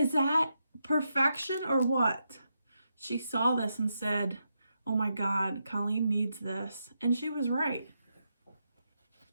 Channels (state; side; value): inverted; both; correlation -0.84